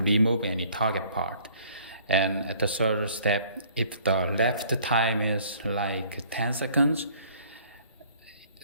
remove any target part. And at the third step, if the left time is like 10 seconds,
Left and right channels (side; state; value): both; inverted; correlation -0.57